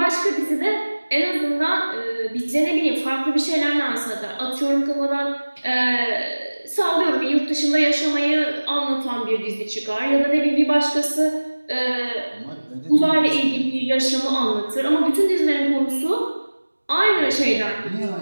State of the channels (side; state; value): both; inverted; correlation -1.00